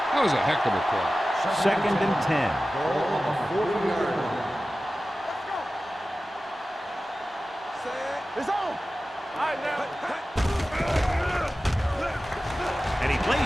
That was a heck of a play. Second and 10. Ball on the 40-yard line. It's on. All right, now. And he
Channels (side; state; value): both; normal; correlation 0.95